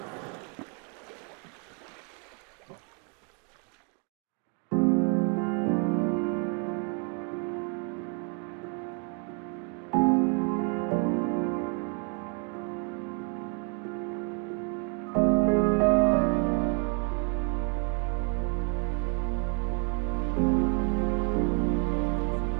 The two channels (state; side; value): quieter; left; 38.1 dB